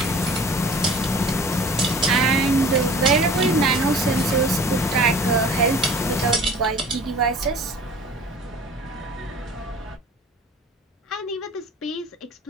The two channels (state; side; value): normal; both; correlation 0.45